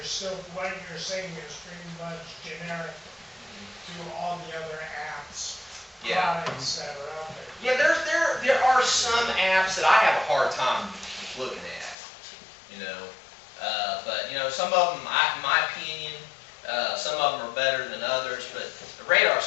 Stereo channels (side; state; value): right; drops out; at 12.0 s